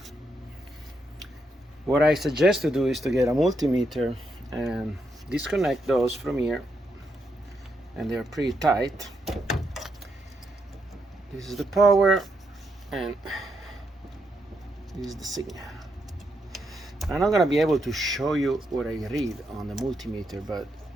What I suggest to do is to get a multimeter and disconnect those from here, and they're pretty tight. This is the power and this is the signal. I'm not going to be able to show you what I read on the multimeter, but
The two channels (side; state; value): both; normal; correlation 0.80